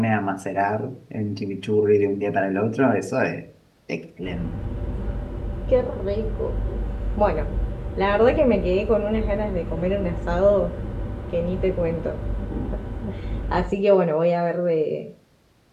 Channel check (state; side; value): identical; both; correlation 1.00